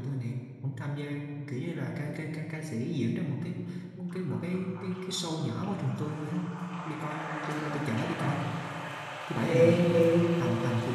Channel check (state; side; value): identical; both; correlation 1.00